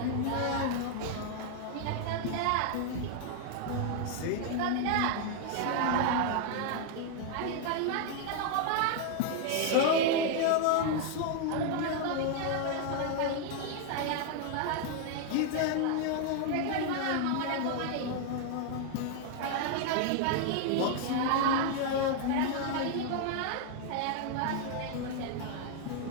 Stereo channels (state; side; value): different; both; correlation 0.00